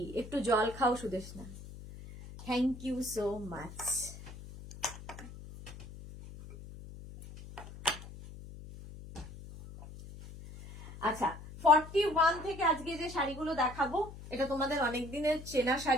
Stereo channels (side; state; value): left; noise; hum, 14 dB below the sound